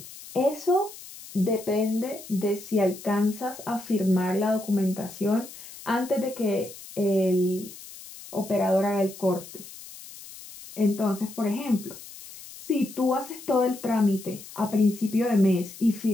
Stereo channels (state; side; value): noise; left; hiss, 16 dB below the sound